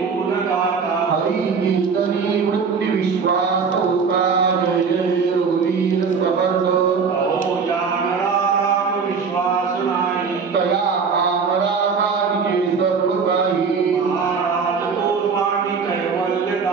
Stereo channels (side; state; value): left; quieter; 5.5 dB